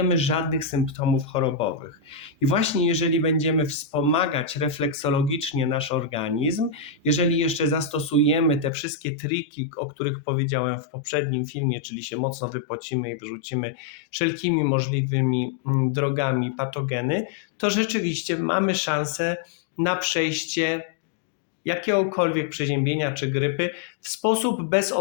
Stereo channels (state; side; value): drops out; right; at 8.7 s